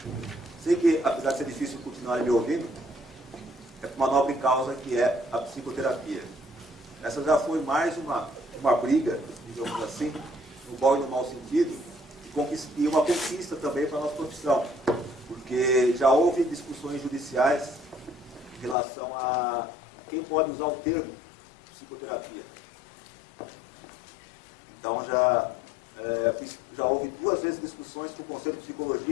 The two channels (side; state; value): right; drops out; at 18.8 s